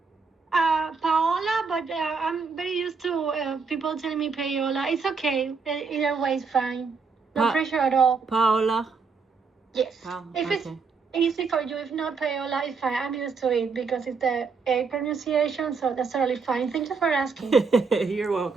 Paola, but I'm very used to people telling me Paola. It's okay. Either way is fine. No pressure at all. Paola? Yes. If it's easy for you, if not Paola, it's fine. I'm used to it because it's the A pronunciation, so that's totally fine. Thank you for asking. You're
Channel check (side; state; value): left; quieter; 5.0 dB